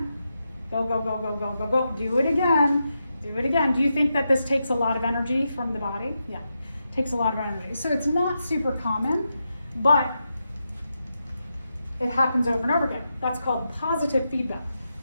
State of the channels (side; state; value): both; inverted; correlation -0.86